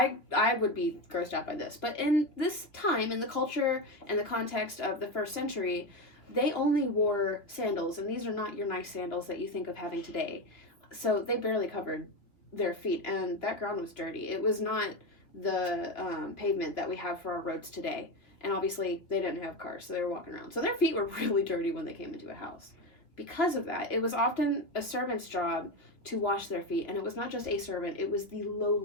would be grossed out by this. But in this time, in the culture and the context of the first century, they only wore sandals, and these are not your nice sandals that you think of having today. So they barely covered their feet, and that ground was dirty. It was not the pavement that we have for our roads today, and obviously they didn't have cars, so they were walking around, so their feet were really dirty when they came into a house. Because of that, it was often a servant's job to wash their feet, and it was not just a servant, it was the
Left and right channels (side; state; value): right; late; 3.0 ms